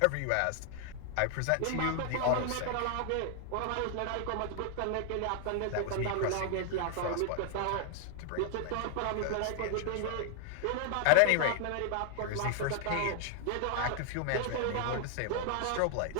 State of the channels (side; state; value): both; different; correlation 0.00